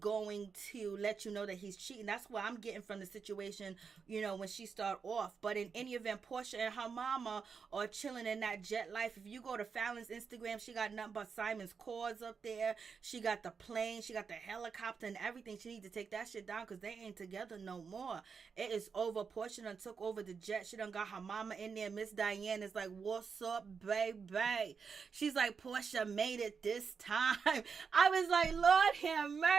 to let you know that he's cheating. That's what I'm getting from the situation, when she start off. But in any event, Portia and her mama are chilling in that jet life. If you go to Fallon's Instagram, she got nothing but got Simon's cause up there. She got the plane. She got the helicopter and everything. She need to take that shit down because they ain't together no more. It is over. Portia done took over the jet. She done got her mama in there. Miss Diane is like, what's up, baby? She's like, Portia made it this time. I was like, Lord have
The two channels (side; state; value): left; quieter; 5.8 dB